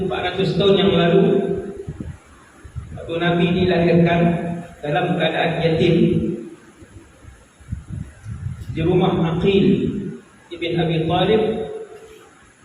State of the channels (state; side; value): identical; both; correlation 1.00